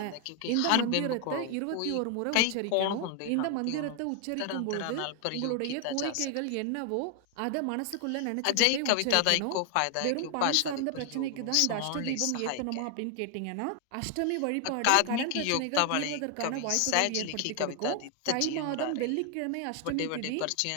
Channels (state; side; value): different; both; correlation 0.00